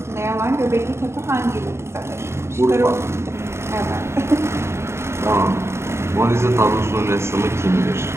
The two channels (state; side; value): late; left; 0.13 ms